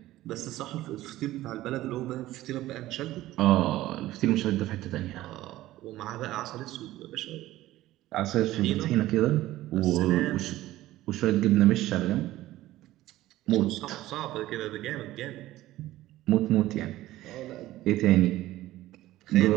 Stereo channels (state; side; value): quieter; left; 15.7 dB